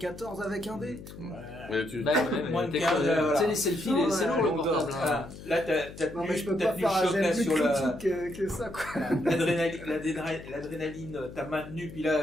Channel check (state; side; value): noise; left; hum, 14 dB below the sound